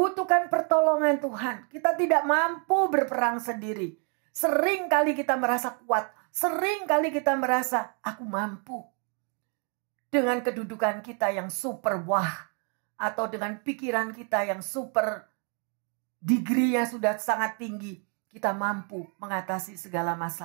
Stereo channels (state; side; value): quieter; left; 39.4 dB